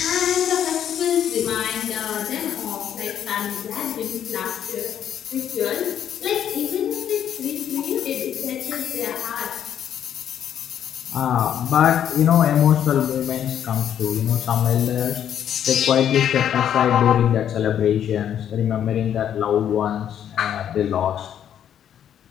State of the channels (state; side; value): quieter; right; 9.7 dB